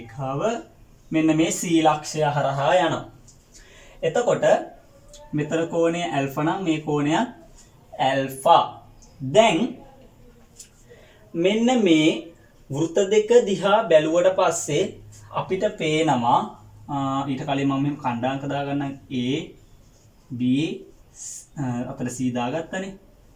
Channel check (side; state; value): both; identical; correlation 1.00